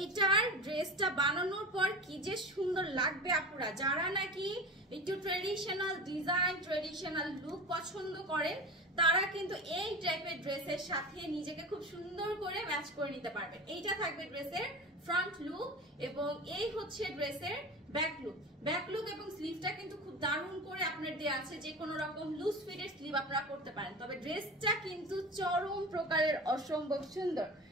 এইটার ড্রেসটা বানানোর পর কি যে সুন্দর লাগবে। আপনারা যারা নাকি একটু ট্রেডিশনাল ডিজাইন, ট্রেডিশনাল লুক পছন্দ করেন, তারা কিন্তু এই টাইপের ড্রেসের সাথে নিজেকে খুব সুন্দর করে ম্যাচ করে নিতে পারবেন। এইটা থাকবে ড্রেসের ফ্রন্ট লুক, এবং এই হচ্ছে ড্রেসের ব্যাক লুক। ব্যাক লুক এবং স্লিভটা কিন্তু খুব দারুণ করে আপনার দেয়া আছে, যে কোনো রকম লুজ ফিটের স্লিভ আপনারা করতে পারেন। তবে ড্রেসটা কিন্তু চরম প্রকারের অসম্ভব সুন্দর।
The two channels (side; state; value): both; normal; correlation 0.31